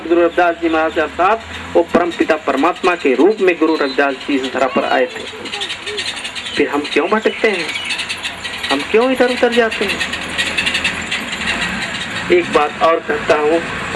रविदास जी महाराज के साथ वो परम पिता परमात्मा के रूप में गुरु रविदास जी इस धरा पर आए थे। फिर हम क्यों भटकते हैं, हम क्यों इधर उधर जाते हैं? एक बात और कहता हूँ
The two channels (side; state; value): both; identical; correlation 1.00